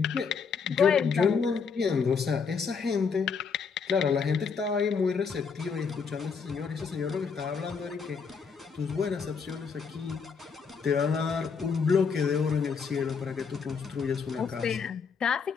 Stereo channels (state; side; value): quieter; right; 5.7 dB